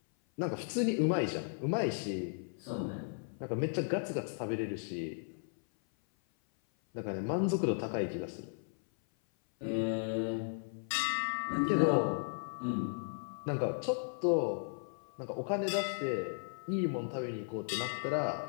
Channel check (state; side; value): silent; right; 54 dB below the other